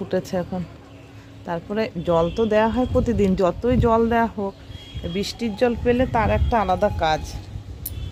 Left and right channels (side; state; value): both; identical; correlation 1.00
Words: এখন। তারপরে জল তো দেওয়া হয় প্রতিদিন, যতই জল দেওয়া হোক বৃষ্টির জল পেলে তার একটা আলাদা কাজ।